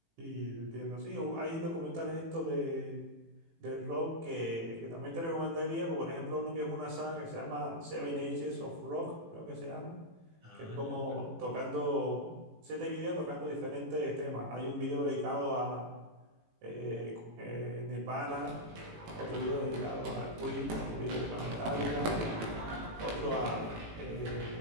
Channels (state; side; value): late; left; 18 ms